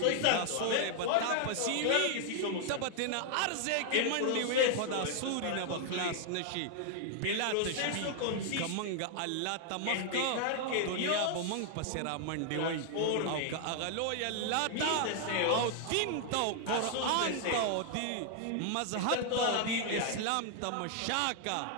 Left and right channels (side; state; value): both; different; correlation 0.00